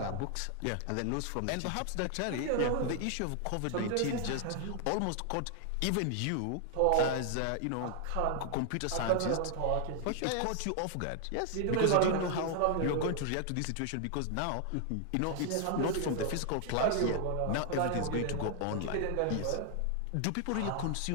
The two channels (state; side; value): different; both; correlation 0.00